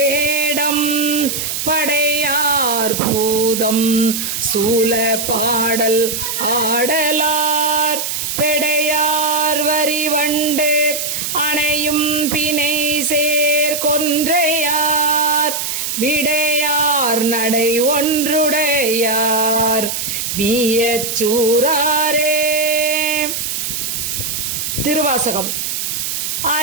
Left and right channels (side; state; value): right; noise; hiss, 3 dB below the sound